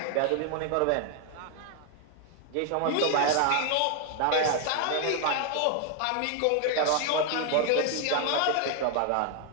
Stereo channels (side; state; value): both; different; correlation 0.01